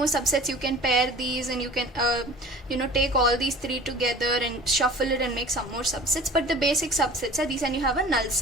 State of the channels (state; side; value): normal; both; correlation 0.43